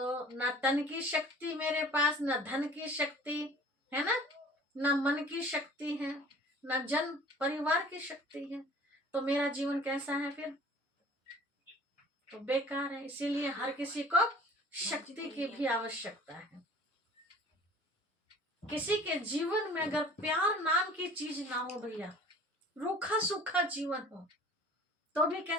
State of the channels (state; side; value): normal; both; correlation 0.48